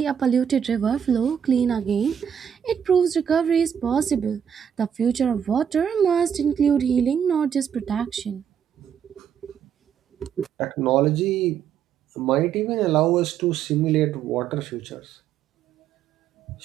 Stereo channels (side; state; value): left; quieter; 8.3 dB